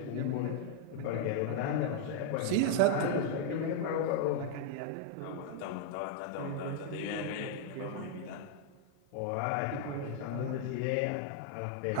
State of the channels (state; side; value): different; both; correlation -0.01